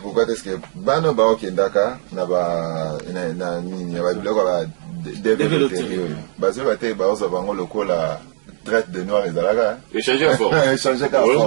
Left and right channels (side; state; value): left; silent; digital silence